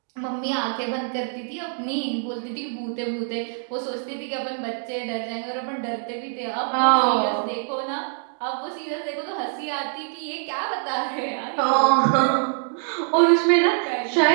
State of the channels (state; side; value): silent; left; 62 dB below the other